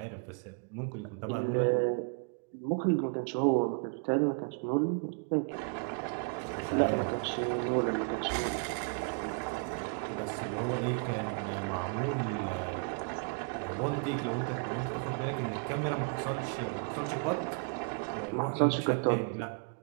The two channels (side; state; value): left; quieter; 40.0 dB